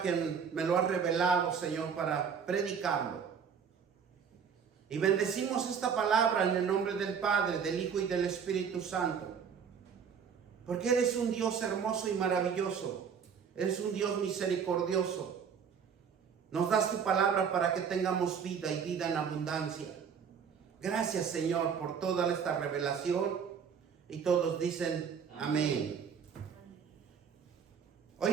que me lo has revelado, Señor, para predicarlo. Y bendecimos esta palabra en el nombre del Padre, del Hijo y del Espíritu Santo. Porque eres un Dios hermoso y maravilloso. Eres un Dios misericordioso. Nos das tu palabra para que tengamos vida y vida en abundancia. Gracias, Señor, por toda esta revelación. Y todos dicen amén.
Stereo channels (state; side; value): quieter; left; 6.9 dB